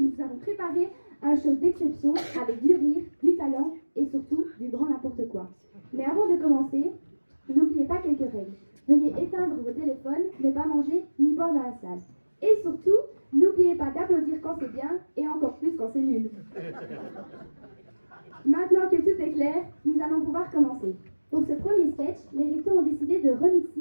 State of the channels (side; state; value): both; inverted; correlation -1.00